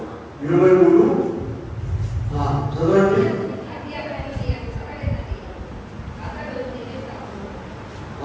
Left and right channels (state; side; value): identical; both; correlation 1.00